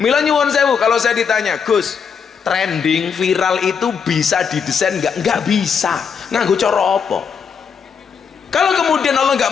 nyuwun sewu, kalau saya ditanya, Gus, trending viral itu bisa didesain nggak? Nggak bisa. Nganggo cara apa? Kalau kemudian Allah nggak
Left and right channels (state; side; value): quieter; right; 6.5 dB